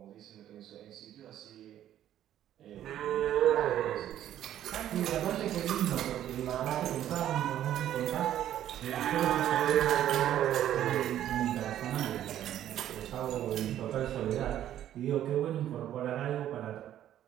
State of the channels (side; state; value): left; quieter; 11.6 dB